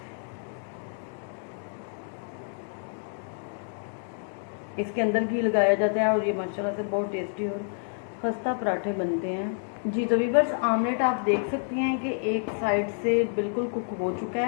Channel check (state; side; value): silent; right; 59 dB below the other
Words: इसके अंदर घी लगाया जाता है और ये माशाल्लाह से बहुत टेस्टी और खस्ता पराठे बनते हैं। जी तो व्यूअर्स, आमलेट आप देख सकती हैं कि एक साइड से बिल्कुल कुक हो चुका